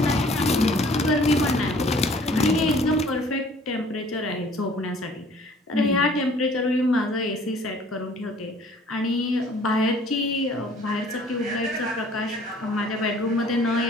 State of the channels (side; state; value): both; normal; correlation 0.54